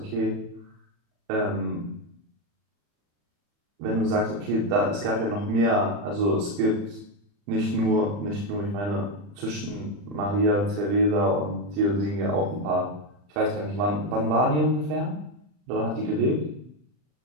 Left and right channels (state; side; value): late; left; 40 ms